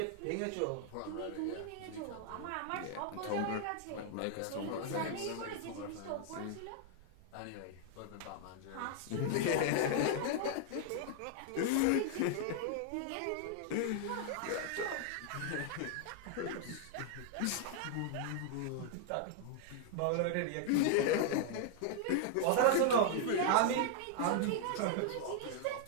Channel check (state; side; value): different; both; correlation 0.00